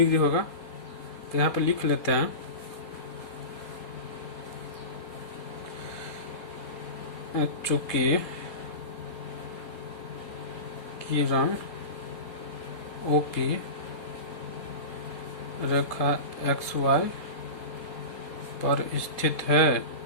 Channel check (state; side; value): late; right; 4.2 ms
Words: होगा। तो यहाँ पे लिख लेते हैं, चूंकि किरण OP रेखा XY पर स्थित है,